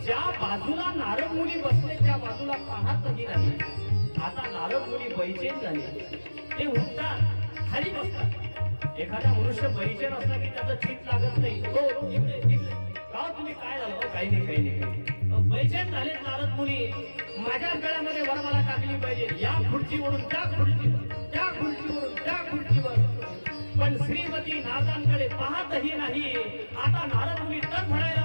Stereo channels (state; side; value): inverted; both; correlation -1.00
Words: ज्या बाजूला नारद मुनी बसले त्या बाजूला पाहतही नाही. आता नारद मुनी बैचेन झाले. ते उठतात, खाली बसतात. एखादा मनुष्य बैचेन असला की त्याचं चित लागत नाही. हो इकडे इकडे का तुम्ही काय झालं? काही नाही काही नाही. बैचेन झाले नारद मुनी. माझ्या गळ्यामध्ये वरमाला टाकली पाहिजे. या खुर्चीवरून त्या खुर्चीवर, त्या खुर्चीवरून त्या खुर्चीवर. पण श्रीमती नारदांकडे पाहतही नाही. आता नारद मुनी तडफडायला